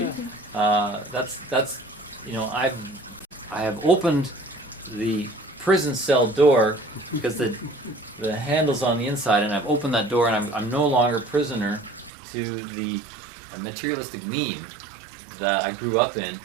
That's you know, I have opened the prison cell door because the handle's on the inside, and I've opened that door, and I'm no longer prisoner to the materialistic meme that I grew up in,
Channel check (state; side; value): drops out; left; at 12.1 s